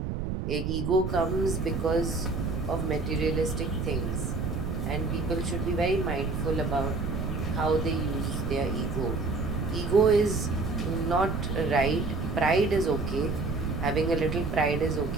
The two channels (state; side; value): noise; right; rumble, 2 dB below the sound